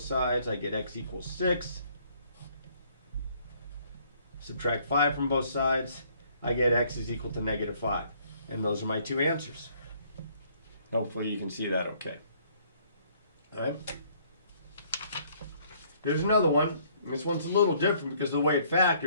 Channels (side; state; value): both; inverted; correlation -0.63